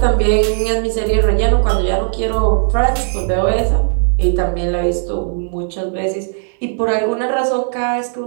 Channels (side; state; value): left; silent; 69 dB below the other